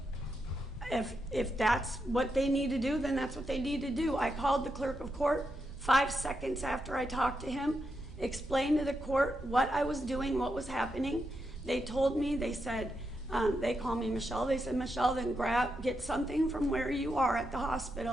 If that's what they need to do, then that's what they need to do. I called the clerk of court 5 seconds after I talked to him, explained to the court what I was doing, what was happening. They told me, they said, they call me Michelle. They said, Michelle, then get something from where you are at the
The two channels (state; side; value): normal; both; correlation 0.84